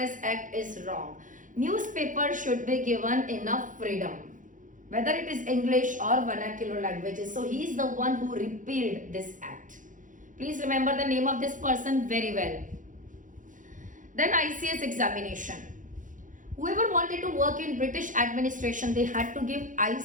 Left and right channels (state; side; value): late; left; 0.38 ms